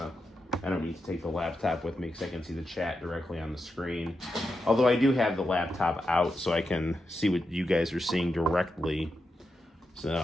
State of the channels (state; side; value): normal; both; correlation 0.87